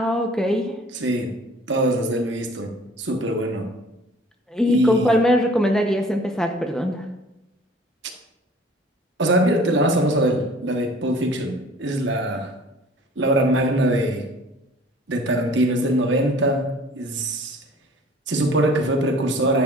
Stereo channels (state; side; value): normal; both; correlation 0.49